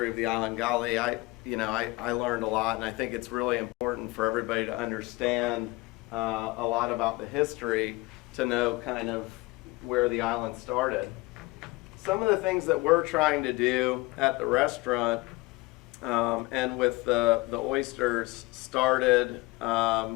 of the island. Golly, I learned a lot, and I think it's really important for everybody to understand a lot about the history to know kind of where the island started. Some of the things that we're trying to do at the restaurant and with the oysters started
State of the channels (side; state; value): right; quieter; 22.6 dB